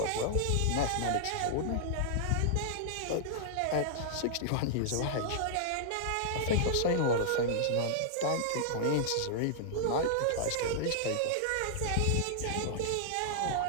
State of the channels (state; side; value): different; both; correlation -0.01